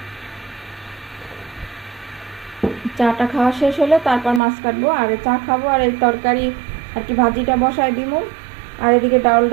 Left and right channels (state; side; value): drops out; left; at 4.4 s